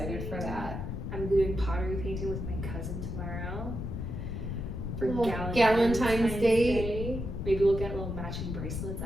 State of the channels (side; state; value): left; noise; rumble, 4 dB below the sound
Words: for that. I'm doing pottery painting with my cousin tomorrow. For Galentine's Day. Maybe we'll get little matching bracelets.